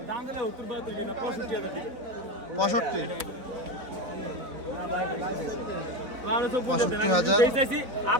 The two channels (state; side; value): late; left; 4.0 ms